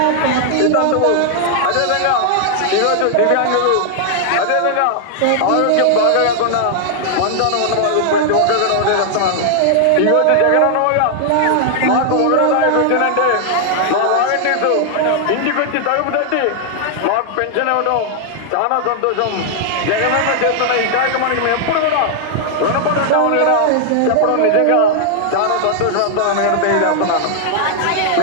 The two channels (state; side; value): different; both; correlation 0.00